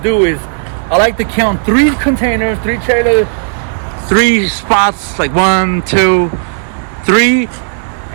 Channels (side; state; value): left; silent; digital silence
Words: do is I like to count 3 containers, 3 trailers, 3 spots, like 1, 2, 3,